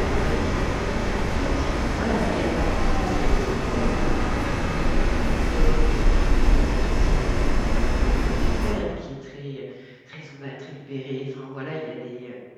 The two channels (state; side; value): identical; both; correlation 1.00